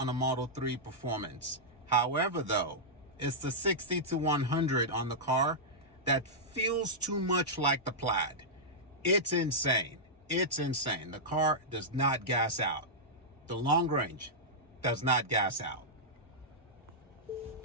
a Model 3 Performance. However, though, it's the 60 to 100 on the car that feels too much like the Plaid. It's insane. It's insane. The car does not gas out. The long range does not gas out.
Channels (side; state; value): both; normal; correlation -0.10